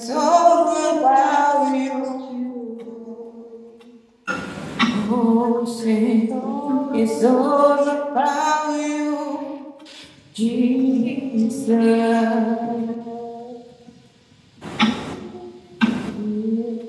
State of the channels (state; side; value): identical; both; correlation 1.00